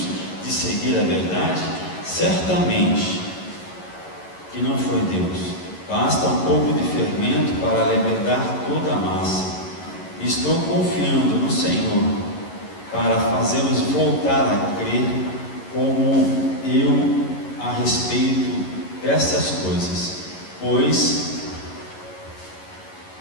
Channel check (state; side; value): late; right; 11 ms